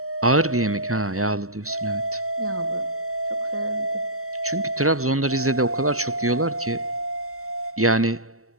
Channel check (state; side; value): late; left; 0.64 ms